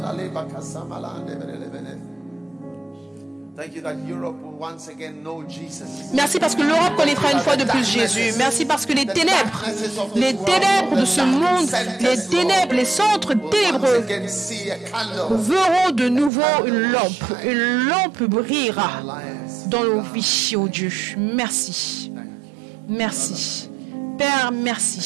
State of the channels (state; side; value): drops out; left; at 16.3 s